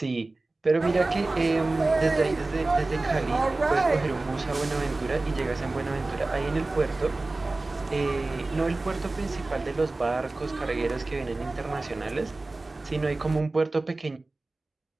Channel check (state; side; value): quieter; left; 3.2 dB